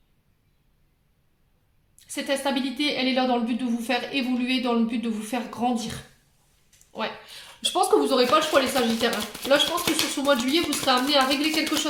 Cette instabilité, elle est là dans le but de vous faire évoluer, dans le but de vous faire grandir. Ouais. Je pense que vous n'aurez pas le choix, les Sagittaires. Là, je pense que sur ce mois de juillet, vous serez amené à régler quelque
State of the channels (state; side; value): identical; both; correlation 1.00